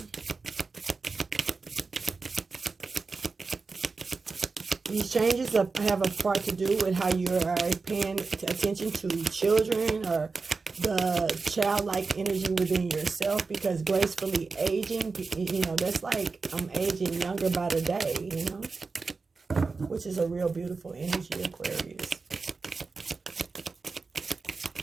These changes have a part to do with how you are paying attention to children or the childlike energy within yourself, because gracefully aging, that's like I'm aging younger by the day, which is a real beautiful energy, Aquarius.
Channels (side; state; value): left; quieter; 4.3 dB